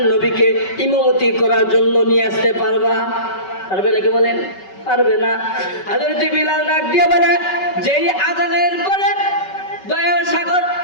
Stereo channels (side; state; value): right; late; 5.3 ms